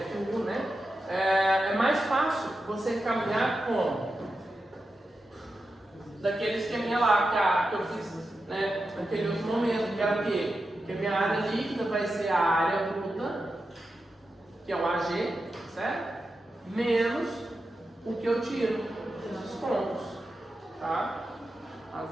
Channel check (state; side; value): normal; both; correlation 0.90